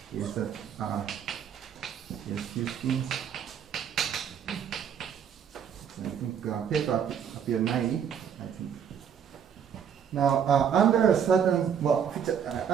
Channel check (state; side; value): quieter; left; 8.1 dB